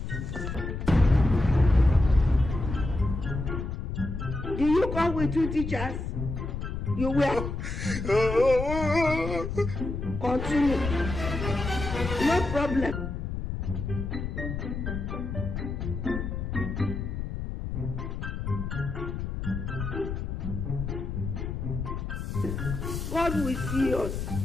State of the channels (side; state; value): left; noise; rumble, 4 dB below the sound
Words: Do you come with two teachers? You will. Continue. No problem. God will see us.